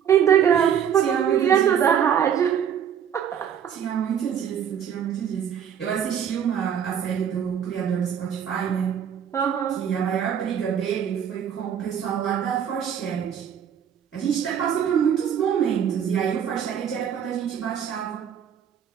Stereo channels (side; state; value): left; quieter; 8.6 dB